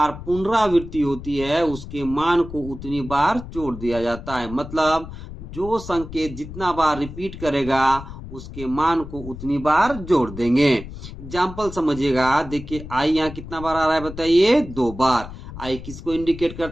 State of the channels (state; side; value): noise; left; rumble, 12 dB below the sound